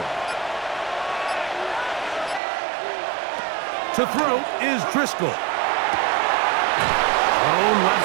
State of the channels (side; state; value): left; drops out; at 2.4 s